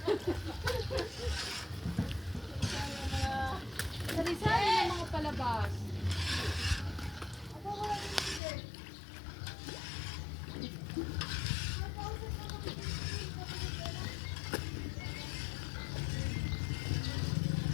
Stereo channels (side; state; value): right; drops out; at 8.4 s